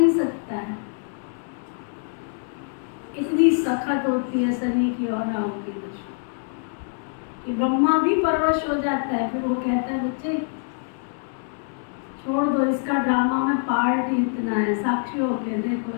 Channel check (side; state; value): right; silent; 57 dB below the other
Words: सकता है। इतनी सख्त होती है शनि की और राहु की दशा कि ब्रह्मा भी परवश हो जाता है। फिर वो कहता है, बच्चे छोड़ दो, इसका ड्रामा में पार्ट ही इतना है, साक्षी होके देखो